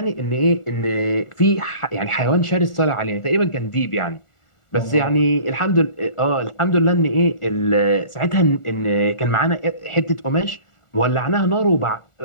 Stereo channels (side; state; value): right; late; 1.4 ms